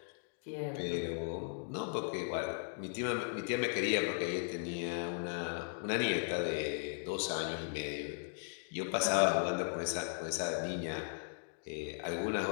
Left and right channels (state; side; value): silent; right; digital silence